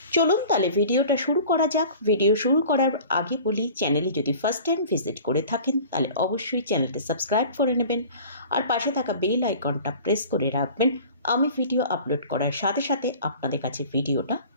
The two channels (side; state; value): both; inverted; correlation -0.43